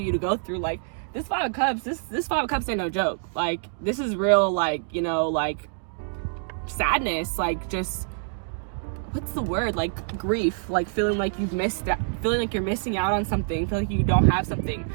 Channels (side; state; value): left; silent; digital silence